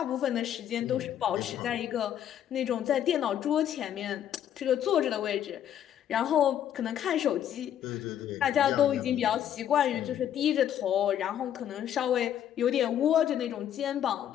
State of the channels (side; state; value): right; quieter; 10.3 dB